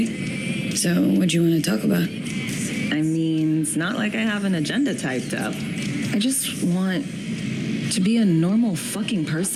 So, what do you want to talk about? I mean, it's not like I have an agenda typed up. I just want to be a normal fucking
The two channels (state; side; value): identical; both; correlation 1.00